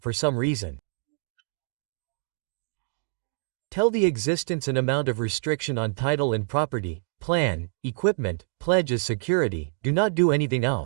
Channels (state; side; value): silent; left; digital silence